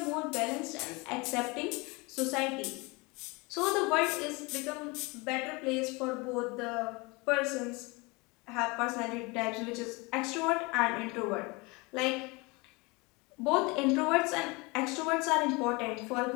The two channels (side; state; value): right; quieter; 26.5 dB